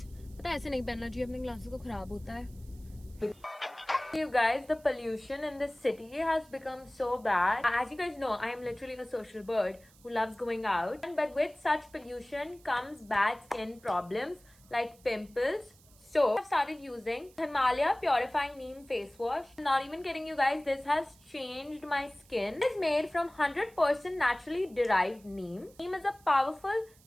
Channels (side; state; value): right; noise; hiss, 27 dB below the sound